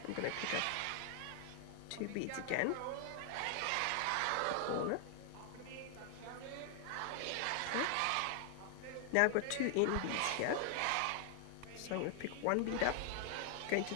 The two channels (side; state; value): both; different; correlation 0.00